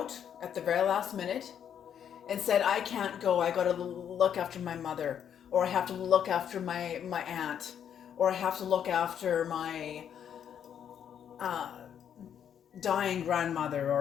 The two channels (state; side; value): quieter; right; 8.9 dB